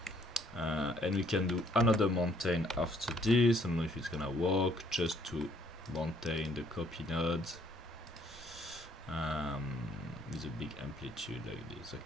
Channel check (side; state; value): both; normal; correlation 0.64